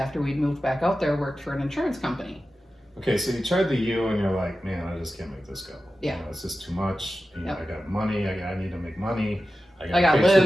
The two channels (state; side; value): normal; both; correlation 0.93